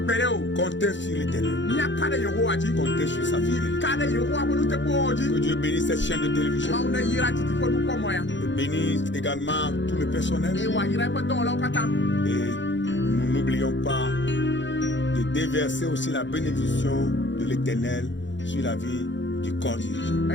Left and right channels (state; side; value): late; right; 0.54 ms